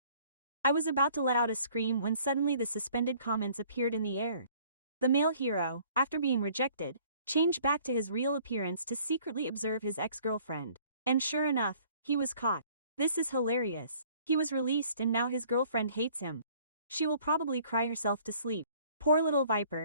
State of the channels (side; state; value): both; inverted; correlation -0.56